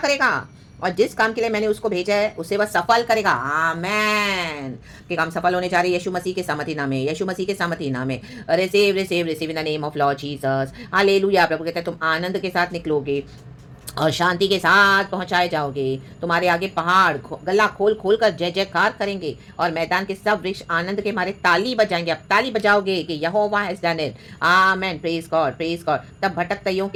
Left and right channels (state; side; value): identical; both; correlation 1.00